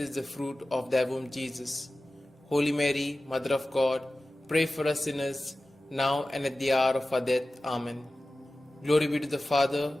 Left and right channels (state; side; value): normal; both; correlation 0.96